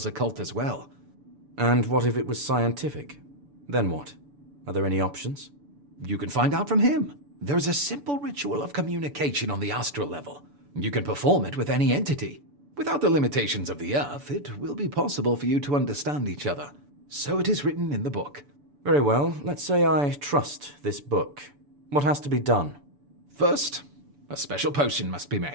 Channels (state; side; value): late; left; 6.9 ms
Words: occult as well. And what if it was scientific? Then what? Are there any options? You can find out from him. There's a simple ritual of communication on the astral level. You can perform it with any entity. Without the limitations of the Earth, it will be possible for you to understand each other. So it is written in the book. Very well. Let's say I trust this book. What has to be done? First, a special potion must be